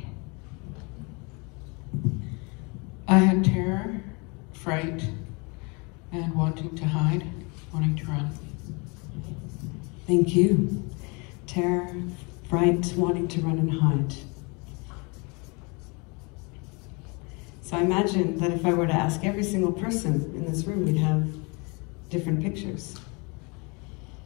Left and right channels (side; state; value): right; quieter; 30.4 dB